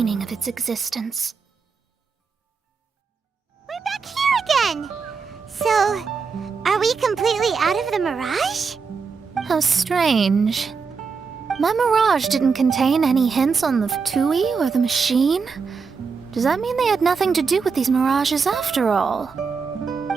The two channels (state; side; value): quieter; left; 5.3 dB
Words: of its existence. We're back here again! So, are we completely out of the mirage? How strange. My mirage didn't contain any hints on the Fatui or the machine. Does that mean they had nothing to do with these mirages after all?